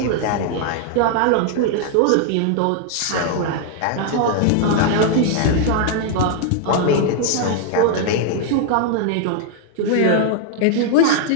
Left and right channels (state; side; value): different; both; correlation 0.00